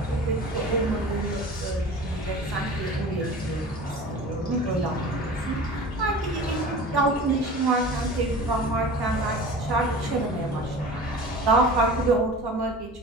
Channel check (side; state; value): both; normal; correlation 0.38